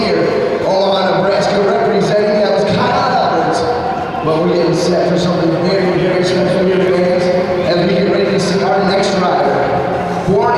Omaha, Nebraska, representing. That was Kyle Alberts. But we're getting set for something very, very special here, fans, as we get ready to see our next rider. Born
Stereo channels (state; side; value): identical; both; correlation 1.00